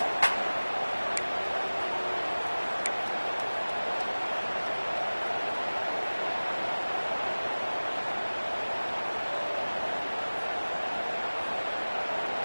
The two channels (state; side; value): inverted; both; correlation -1.00